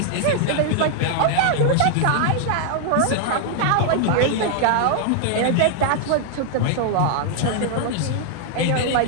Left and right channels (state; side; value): different; both; correlation 0.00